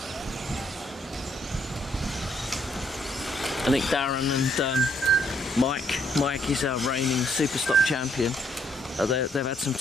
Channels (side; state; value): both; normal; correlation 0.71